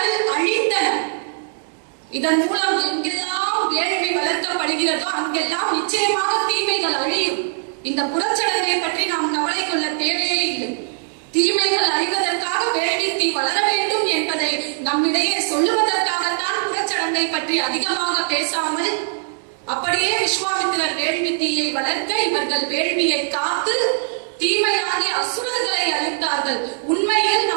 அழிந்தன. இதன் மூலம் எங்கெல்லாம் வேள்வி வளர்க்கப்படுகிறதோ அங்கெல்லாம் நிச்சயமாக தீமைகள் அழியும். இந்த புறச்சடங்கை பற்றி நாம் கவலை கொள்ள தேவையே இல்லை. தீமைகள் அழிவதற்காக வேள்வி தீ வளர வேண்டும் என்பதை நம்மிடையே சொல்லுவதற்காகத்தான் புறச்சடங்கை பற்றி அதிகமாக பேசாமல் அப்படியே விஸ்வாமித்திரர் வேள்வி தீயை வளர்க்க இவர்கள் வேள்வியை காத்து தீமையாகிய அசுரர்களை அழித்தார்கள். உண்மையில்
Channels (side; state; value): left; silent; digital silence